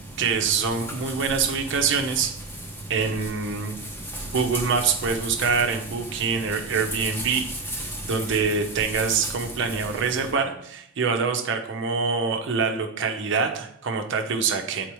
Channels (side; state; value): left; quieter; 4.7 dB